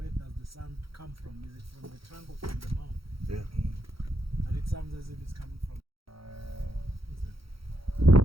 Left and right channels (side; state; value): left; late; 0.75 ms